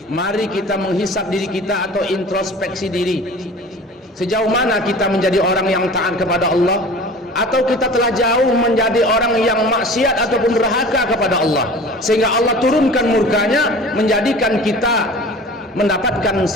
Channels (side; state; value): both; normal; correlation 0.41